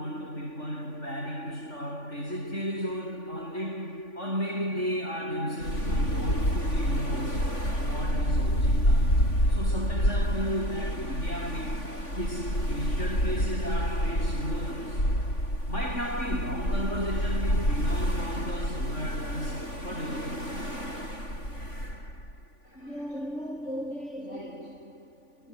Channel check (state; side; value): late; right; 3.5 ms